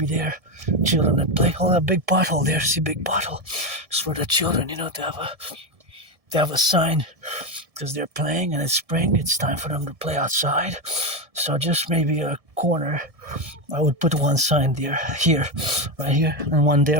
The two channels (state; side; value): late; left; 1.7 ms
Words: there, children at play. Oh, that big pothole there, see, big pothole. It's for the children, to have a sign, because they're playing and it's spring, it's time for them to play outside. So just maybe a corner, I would put one sign there, right here, and one there.